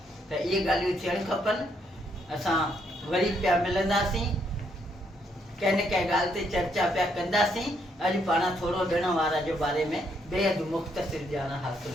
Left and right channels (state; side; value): normal; both; correlation 0.73